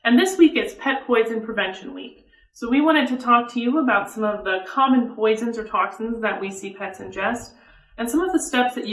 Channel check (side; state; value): both; identical; correlation 1.00